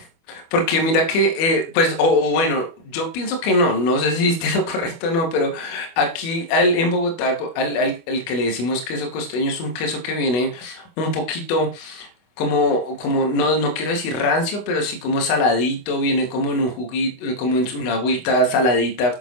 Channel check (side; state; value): right; late; 24 ms